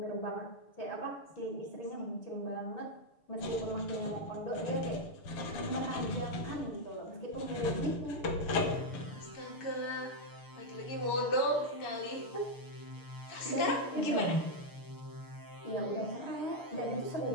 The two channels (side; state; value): right; late; 6.7 ms